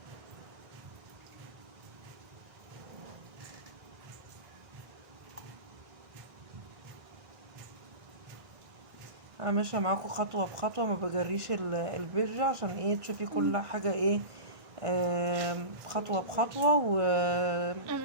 انا ماشيه معاكم خطوه بخطوه، ما بجريش الفيديو عشان ايه تشوفي كل حاجه ايه خطوه بخطوه. و انا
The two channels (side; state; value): left; late; 1.5 ms